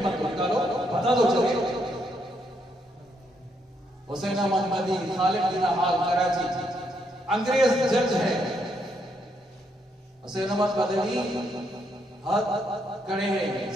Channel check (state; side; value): normal; both; correlation 0.76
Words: तो निकालो, बता दो चले। हुसैन अहमद मदनी खालिद बिन हाल कराची अंग्रेज जज है। हुसैन अहमद मदनी हाथ खड़े हैं,